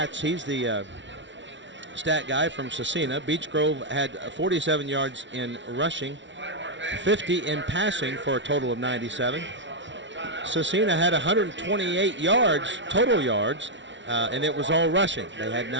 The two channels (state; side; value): late; left; 0.54 ms